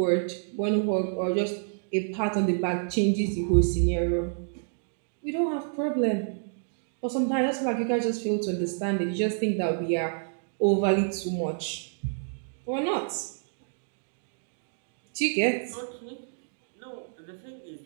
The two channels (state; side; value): silent; left; digital silence